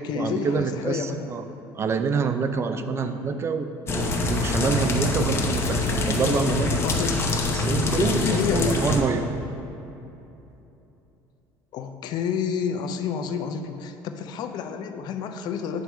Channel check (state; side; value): normal; both; correlation 0.48